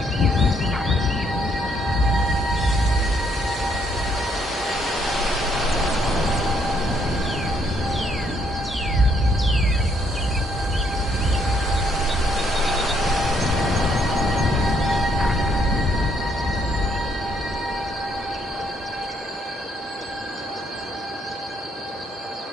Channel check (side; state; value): both; normal; correlation 0.70